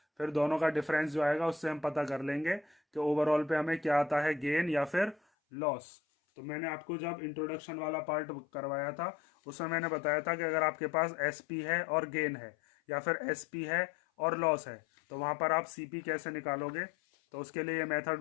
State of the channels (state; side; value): drops out; right; at 5.2 s